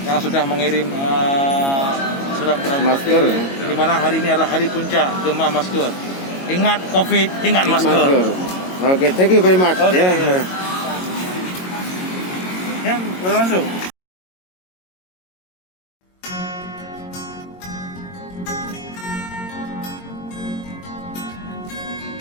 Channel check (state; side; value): late; right; 22 ms